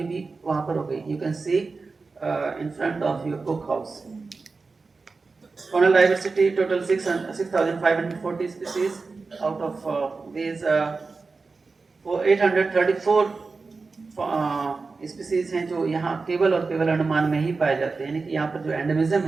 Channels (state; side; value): quieter; left; 4.2 dB